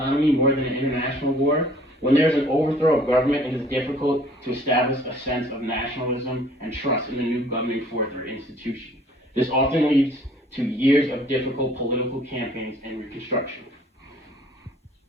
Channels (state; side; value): normal; both; correlation 0.56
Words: more than an international war. When there is an overthrow of government, it is difficult to establish a sense of nationalism and trust in the new governing force or institution. This often leads to years of difficult political campaigns and reconstruction.